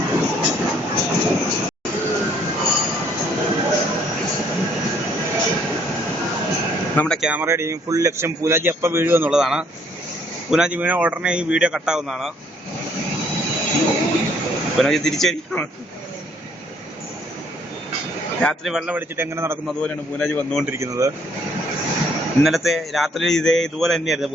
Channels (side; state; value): both; normal; correlation 0.64